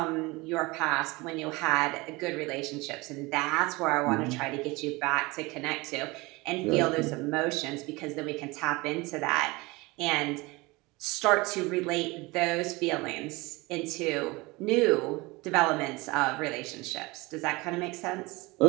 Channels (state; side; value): quieter; left; 23.3 dB